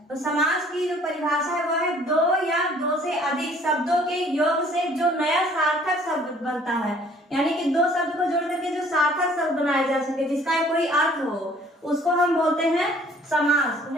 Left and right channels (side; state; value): both; normal; correlation 0.57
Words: तो समास की जो परिभाषा है वह है दो या दो से अधिक शब्दों के योग से जो नया सार्थक शब्द बनता है, यानी कि दो शब्द को जोड़ करके जो सार्थक शब्द बनाया जा सके, जिसका कोई अर्थ हो, उसको हम बोलते हैं समास।